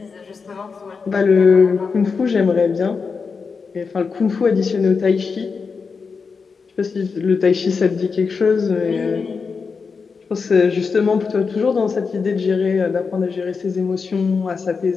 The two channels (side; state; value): right; quieter; 5.1 dB